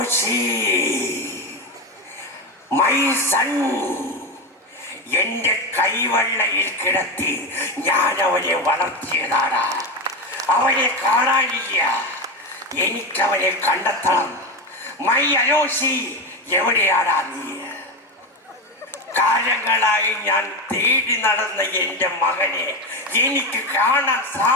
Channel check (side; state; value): both; normal; correlation 0.16